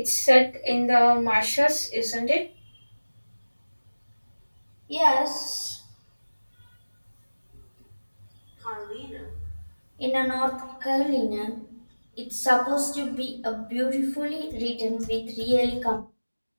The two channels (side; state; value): both; inverted; correlation -1.00